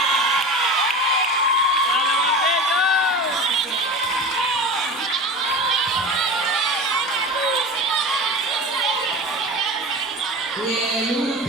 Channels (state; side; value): normal; both; correlation 0.31